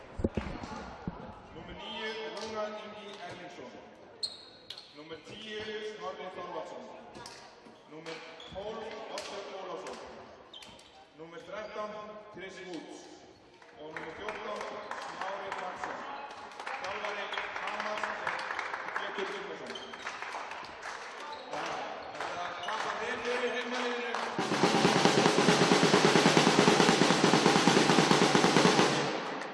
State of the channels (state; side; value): identical; both; correlation 1.00